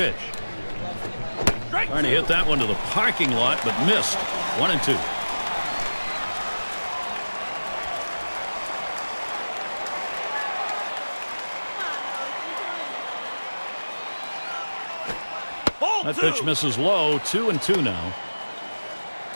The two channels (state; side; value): inverted; both; correlation -1.00